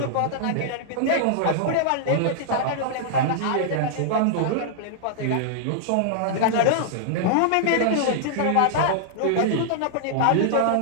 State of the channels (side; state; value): both; different; correlation -0.01